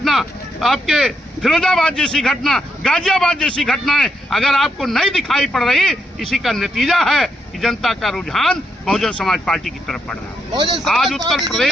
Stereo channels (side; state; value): both; normal; correlation 0.80